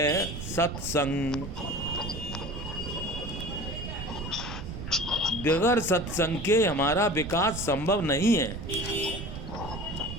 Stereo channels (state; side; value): noise; right; rumble, 8 dB below the sound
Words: सत्संग। बगैर सत्संग के हमारा विकास संभव नहीं है।